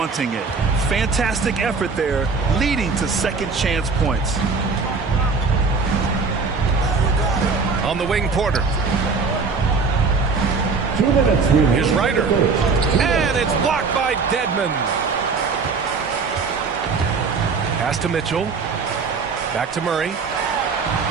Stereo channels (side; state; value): left; quieter; 4.7 dB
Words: it. Fantastic effort there, leading to second chance points. On the wing, Porter. 2 minutes. Here's Ryder. And it's blocked by Dedmon. Pass to Mitchell. Back to Murray.